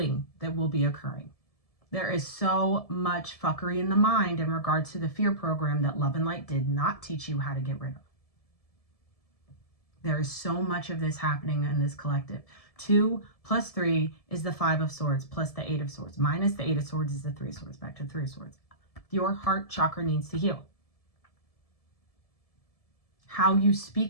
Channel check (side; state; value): right; late; 1.7 ms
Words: that will be occurring. There is so much fuckery in the mind in regards to the fear program that Love and Light did not teach you how to get rid of. There is so much of this happening in this collective. 2 plus 3 is the 5 of Swords plus the 8 of Swords. Minus the 8 of Swords is the 3 of Swords. Back to the 3 of Swords. Your heart chakra needs to heal. How you